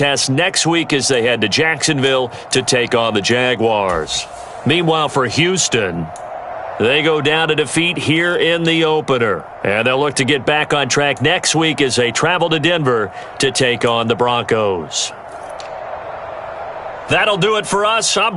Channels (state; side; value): identical; both; correlation 1.00